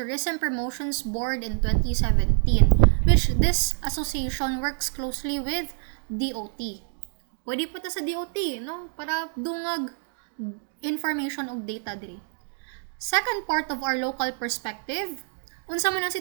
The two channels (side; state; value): left; silent; digital silence